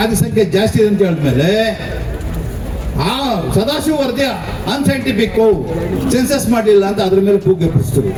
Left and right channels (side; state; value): both; identical; correlation 1.00